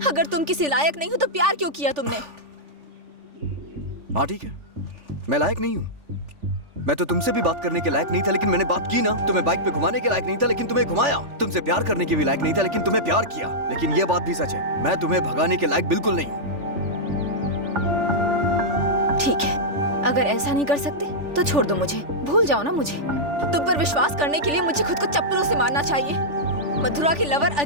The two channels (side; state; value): left; late; 3.4 ms